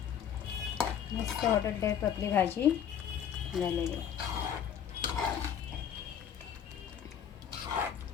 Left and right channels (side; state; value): right; quieter; 8.8 dB